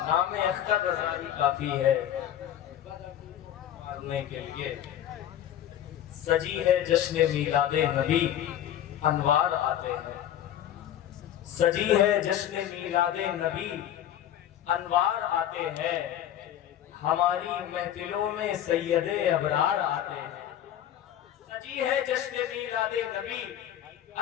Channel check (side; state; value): right; quieter; 11.2 dB